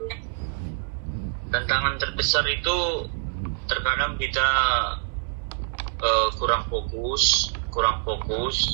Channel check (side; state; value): left; silent; 61 dB below the other